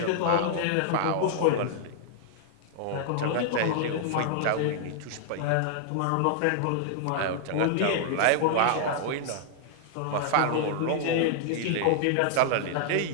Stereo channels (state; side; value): different; both; correlation -0.01